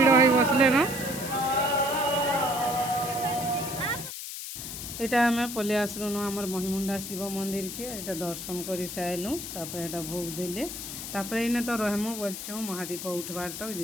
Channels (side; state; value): left; noise; hiss, 8 dB below the sound